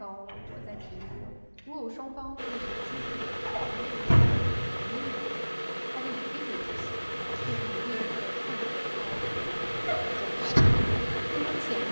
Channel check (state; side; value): inverted; both; correlation -1.00